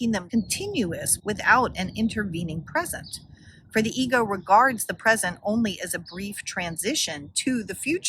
them continuous without an intervening present. For the ego regards the present only as a brief transition to the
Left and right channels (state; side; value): identical; both; correlation 1.00